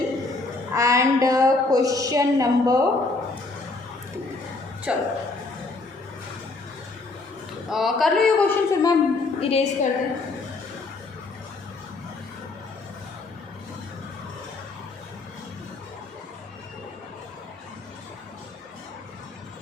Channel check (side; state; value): right; quieter; 3.4 dB